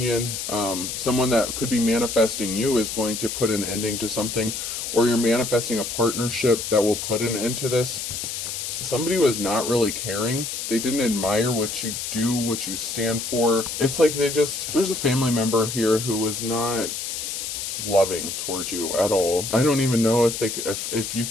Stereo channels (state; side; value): noise; left; hiss, 5 dB below the sound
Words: someone that could be manifesting you is going to put an ending to something, or you're manifesting a partnership that will put an end to this. somebody was not really caring. They didn't admire what you do, what you stand for. It's like there's a family member here who was not loving towards you at all. I don't even know if you